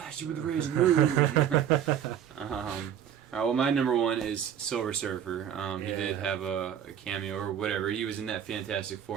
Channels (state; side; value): quieter; left; 9.4 dB